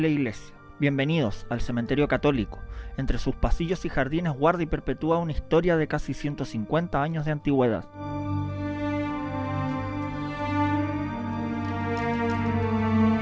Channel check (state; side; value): identical; both; correlation 1.00